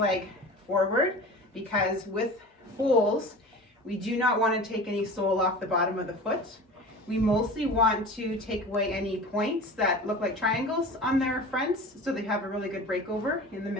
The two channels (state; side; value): normal; both; correlation 0.36